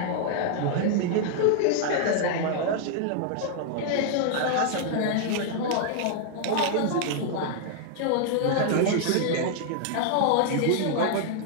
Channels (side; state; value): both; different; correlation 0.00